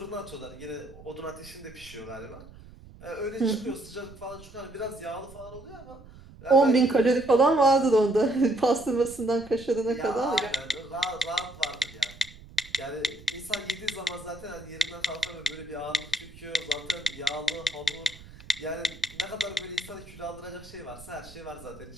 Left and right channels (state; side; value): noise; right; rumble, 19 dB below the sound